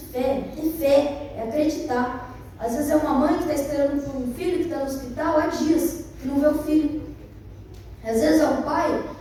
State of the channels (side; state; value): both; identical; correlation 1.00